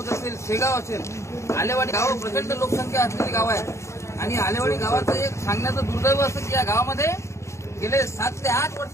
असेल, शेगाव असेल, आलेवाडी गाव प्रचंड लोकसंख्या असलेली गाव आहे. आणि आलेवाडी गावाचं एक सांगण्याचं दुर्दैव असं की या गावामध्ये गेले 7 ते 8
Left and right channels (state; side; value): late; right; 0.14 ms